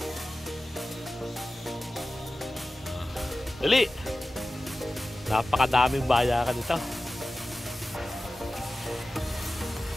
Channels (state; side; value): normal; both; correlation 0.95